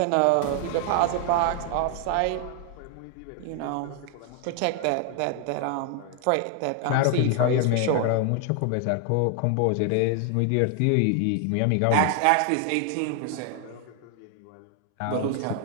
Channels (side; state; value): both; different; correlation 0.00